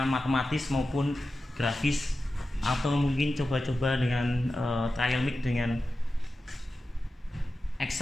matematis maupun grafis, atau mungkin coba-coba dengan trial mix dengan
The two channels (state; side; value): normal; both; correlation 0.93